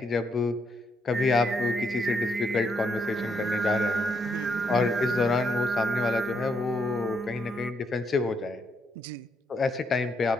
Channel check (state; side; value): normal; both; correlation 0.77